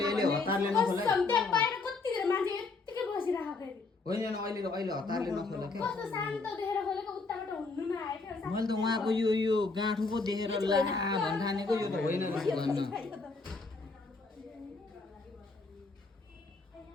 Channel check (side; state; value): right; quieter; 3.9 dB